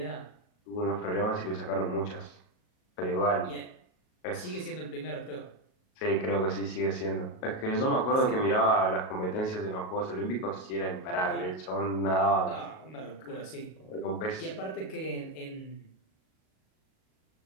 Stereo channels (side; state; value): right; late; 38 ms